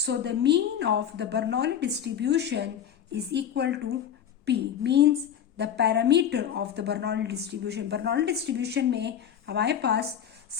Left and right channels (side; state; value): right; quieter; 9.1 dB